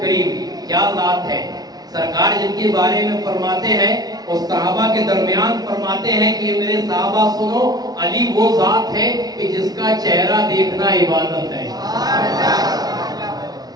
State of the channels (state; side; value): late; left; 0.19 ms